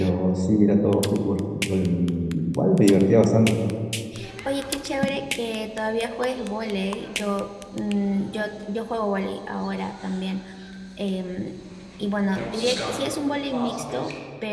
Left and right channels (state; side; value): identical; both; correlation 1.00